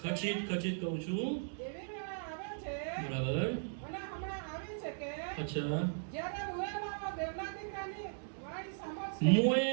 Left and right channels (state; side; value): silent; left; digital silence